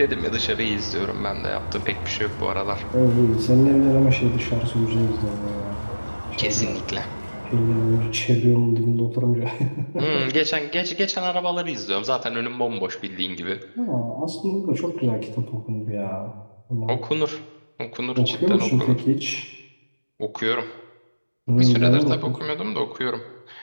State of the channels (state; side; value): inverted; both; correlation -1.00